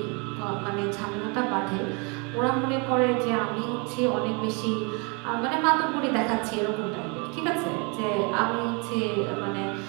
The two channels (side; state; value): left; quieter; 32.2 dB